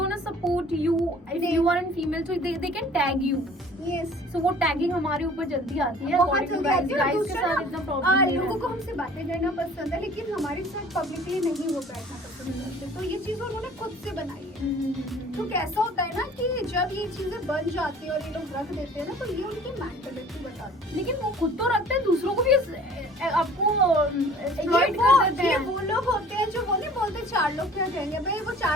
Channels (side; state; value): both; normal; correlation 0.49